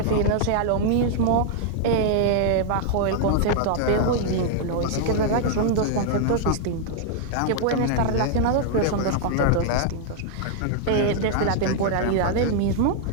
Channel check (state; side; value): different; both; correlation -0.01